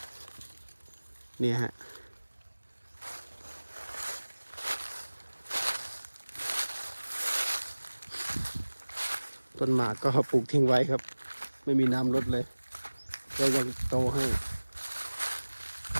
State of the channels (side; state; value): both; inverted; correlation -1.00